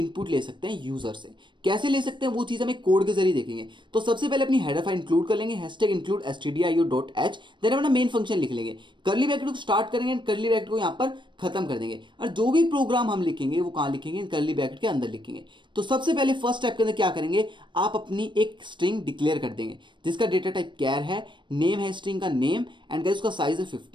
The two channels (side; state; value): left; late; 0.23 ms